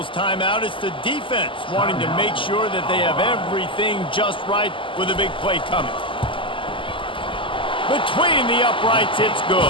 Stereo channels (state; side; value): late; right; 0.25 ms